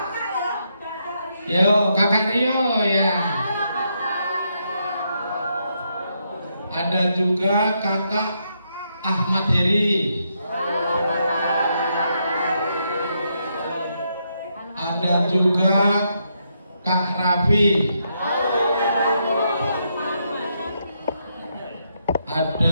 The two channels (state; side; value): inverted; both; correlation -0.79